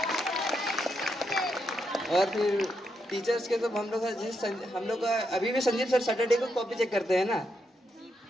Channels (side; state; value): both; normal; correlation 0.81